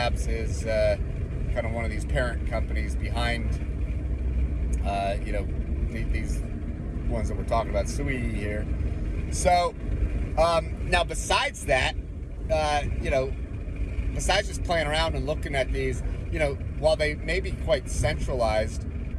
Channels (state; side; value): identical; both; correlation 1.00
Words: is kind of one of these parent companies behind, these ones that we're talking about, SUI here. So, now besides that, besides just playing around and looking at these, while they may be quite centralized,